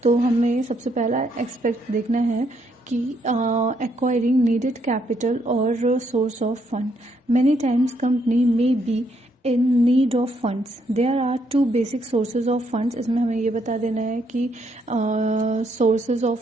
तो हमें सबसे पहला एक्सपेक्ट देखना है कि एक्वायरिंग नीडेड कैपिटल और source of fund. Many times company में B in need of funds. There are 2 basic sources of funds. इसमें हमें ये बता देना है कि sources of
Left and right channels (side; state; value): both; normal; correlation 0.74